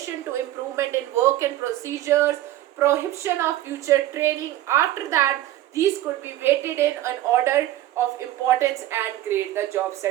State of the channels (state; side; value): quieter; left; 14.2 dB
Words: to improvement in work and procedures, prohibition of future training. After that, these could be weighted in an order of importance and grade the job